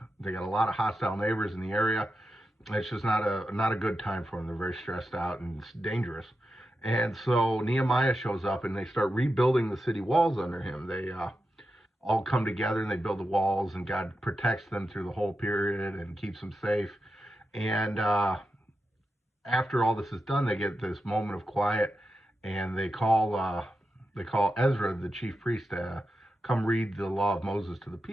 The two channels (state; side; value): normal; both; correlation 0.89